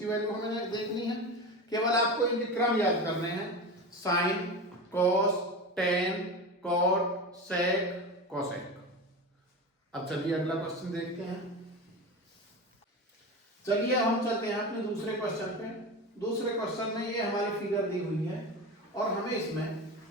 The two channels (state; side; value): normal; both; correlation 0.26